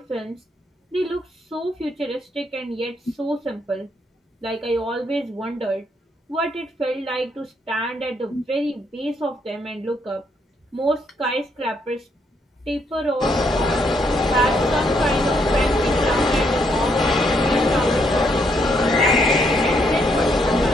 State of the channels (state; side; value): normal; both; correlation 0.74